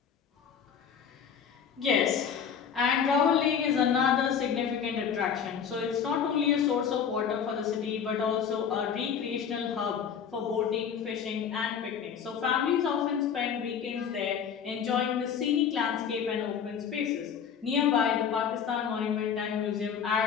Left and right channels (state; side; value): quieter; right; 7.4 dB